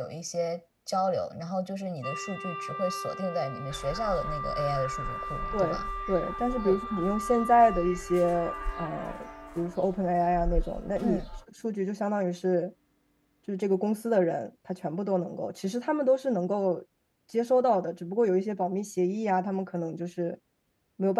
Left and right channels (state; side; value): identical; both; correlation 1.00